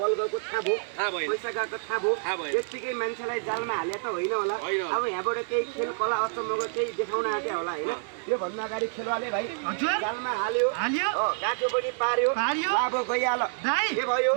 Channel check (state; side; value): silent; left; digital silence